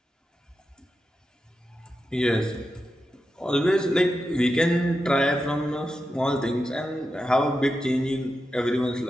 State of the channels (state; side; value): normal; both; correlation 0.89